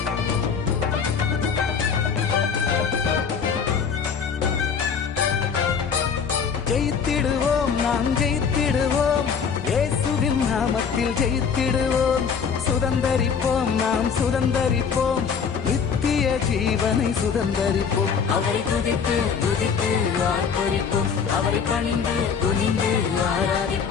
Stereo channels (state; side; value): quieter; right; 6.4 dB